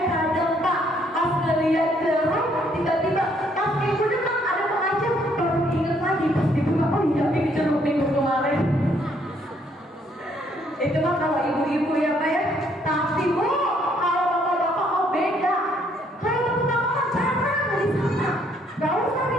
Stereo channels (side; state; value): both; normal; correlation 0.67